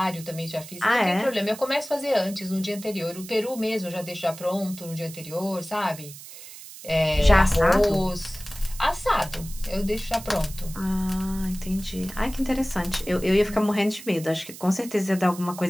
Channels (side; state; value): right; noise; hiss, 15 dB below the sound